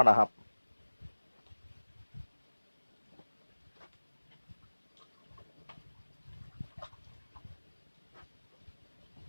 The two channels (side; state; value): both; inverted; correlation -1.00